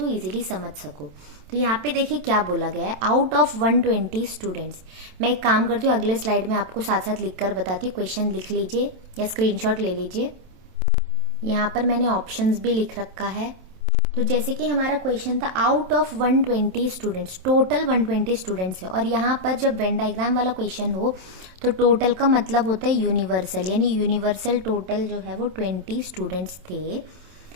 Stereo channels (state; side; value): late; left; 27 ms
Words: इजीली समझ सको। तो यहाँ पे देखिए क्या बोला गया है, आउट ऑफ 120 स्टूडेंट्स। मैं एक काम करती हूँ, अगले स्लाइड में आपको साथ साथ लिख कर बताती हूँ, क्वेश्चन लिख लीजिए या स्क्रीनशॉट ले लीजिए। यहाँ पर मैंने ऑप्शंस भी लिख रखा है। तो जैसे कि हमारा क्वेश्चन था out of 120 students, total 120 students है, और यहाँ पर जब वेन डायग्राम वाला क्वेश्चन हो तो टोटल का मतलब होता है यूनिवर्सल, यानी यूनिवर्सल टोटल जो है वो 20 स्टूडेंट्स थे।